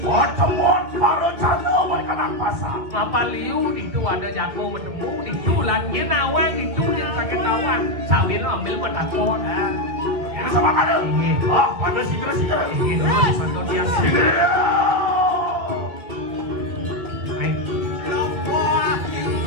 Pertemuan para canda berikan apa sah? apa liu itu ada jago bertemu itu langit nawang itu yang sakit tawang sawin ambil menakut Ini sama kan? Ah, pada segera. ini durus Margo dia kiri Hai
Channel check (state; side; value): late; left; 2.2 ms